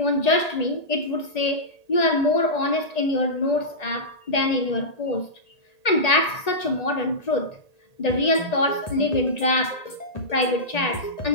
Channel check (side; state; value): right; late; 1.8 ms